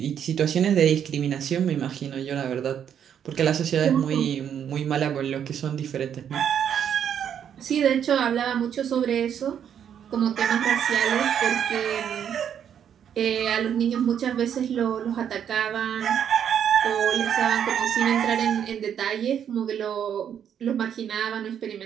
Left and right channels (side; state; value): left; quieter; 8.8 dB